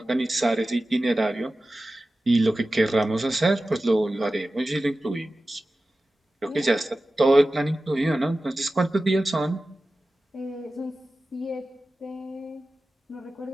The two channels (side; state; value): both; normal; correlation 0.95